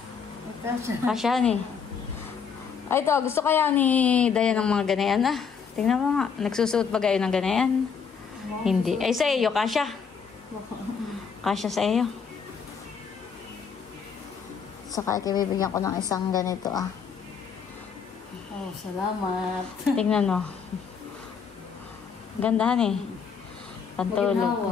Kasya ni. Ay, ito. Gusto kaya ni Dayan ng mga ganayan Tingnan mo nga. Nagsusuot ba kayo ng ganayan? Hindi. Ay, sa iyo, kasya. Kasya sa iyo. Saka ito, bibigyan ko ng isang ganito Oh, salamat. Tingnan mo. Gandahan eh.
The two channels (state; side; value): quieter; right; 6.3 dB